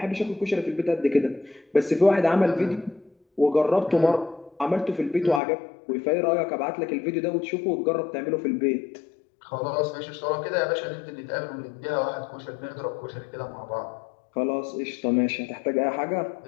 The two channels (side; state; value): right; drops out; at 5.4 s